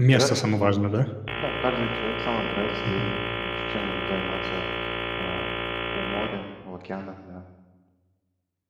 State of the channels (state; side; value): identical; both; correlation 1.00